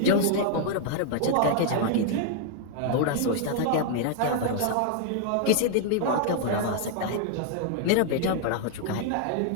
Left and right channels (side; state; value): both; different; correlation 0.00